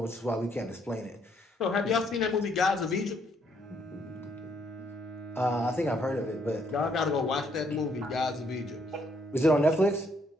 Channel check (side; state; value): both; normal; correlation 0.70